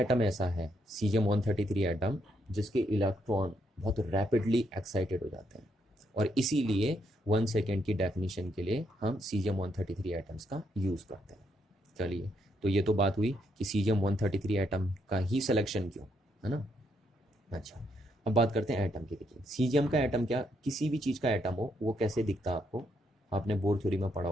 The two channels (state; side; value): normal; both; correlation 0.76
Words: ऐसा है सीजियम 133 एटम जिसके इलेक्ट्रॉन बहुत रैपिडली एक्साइटेड हो जाते हैं, और इसीलिए 1 सेकेंड की डेफिनेशन के लिए हम सीजियम 133 एटम्स का यूज़ करते हैं। चलिए, तो ये तो बात हुई कि सीजियम 133 एटम का ही सिलेक्शन क्यों, है ना। अच्छा, अब बात करते हैं एटम की। देखिए सीजियम का एटम क्या, किसी भी चीज़ का एटम हो वो कैसे दिखता है आपको, आपने बोर थ्योरी में पढ़ा